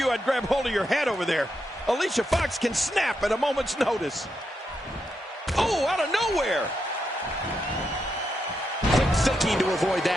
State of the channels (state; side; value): normal; both; correlation 0.84